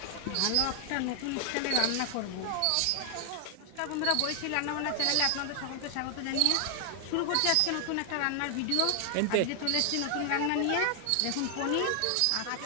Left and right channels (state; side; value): different; both; correlation 0.00